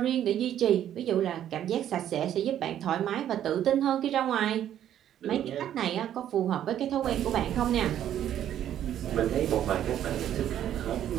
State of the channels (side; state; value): left; quieter; 10.9 dB